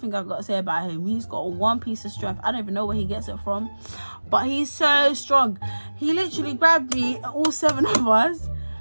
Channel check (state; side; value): inverted; both; correlation -1.00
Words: I've got to say about him. He's got one piece of strength. I don't even know where he gets it from, but he's so strong. He literally grabbed me, all 7 of us,